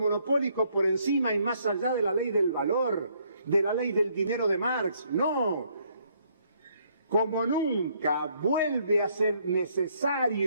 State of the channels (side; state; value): both; inverted; correlation -0.69